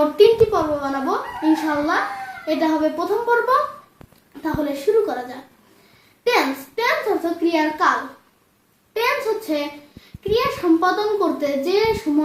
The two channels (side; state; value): both; identical; correlation 1.00